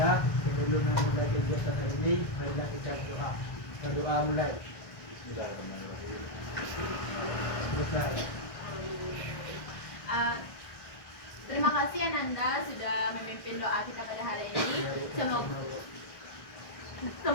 sebelum memulai kegiatan hari ini, marilah kita berdoa. Berdoa mulai. Selesai. Terima kasih Ananda sudah memimpin doa kita pada hari ini.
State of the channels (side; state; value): right; late; 1.6 ms